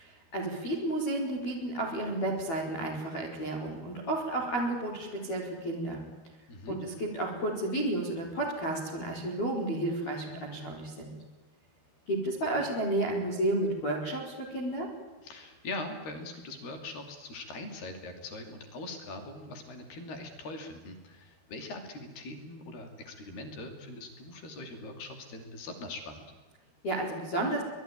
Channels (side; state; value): right; late; 12 ms